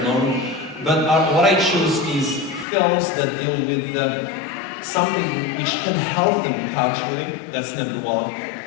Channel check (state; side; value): drops out; right; at 2.7 s